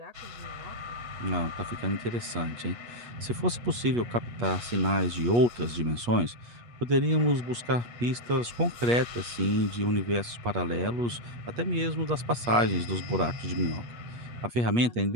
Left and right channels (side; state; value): left; late; 8.4 ms